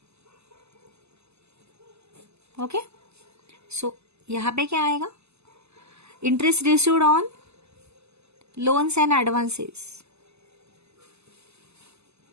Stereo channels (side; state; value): left; late; 0.80 ms